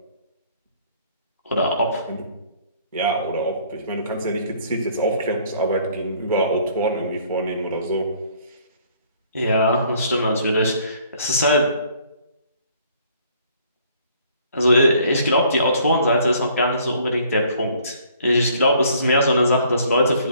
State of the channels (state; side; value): inverted; both; correlation -0.60